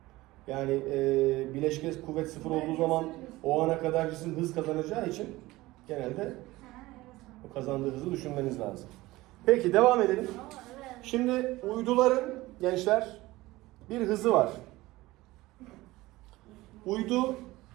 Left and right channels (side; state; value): left; quieter; 19.0 dB